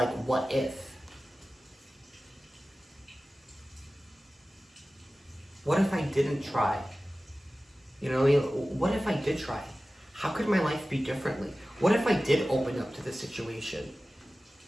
what if? What if I didn't try? You know what I mean? What if I did try? How could my life be differently? What if I did open up to this situation?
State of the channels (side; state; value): both; normal; correlation 0.96